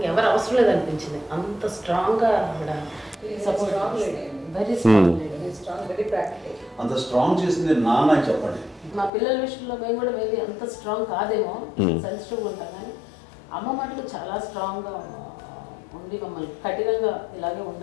ఎవరు అవసరం లేదనిపించింది. అంత స్ట్రాంగ్గా ఆవిడ support, very strong, very practical. అంత స్ట్రాంగ్ చేసింది నాన్న అని చెప్పండి. మా పిల్లల విషయంలో మేము కూడా మేబీ అంత స్ట్రాంగ్ కాదేమో, సెన్సిటివ్గా ఉంటాం, కానీ అమ్మ మటుకు చాలా స్ట్రాంగ్గా ఉండి మమ్మల్ని కఠినంగా ఇలాగే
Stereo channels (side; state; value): right; drops out; at 9.1 s